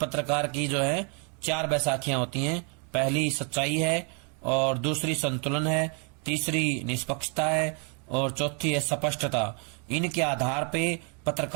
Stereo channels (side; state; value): left; quieter; 38.2 dB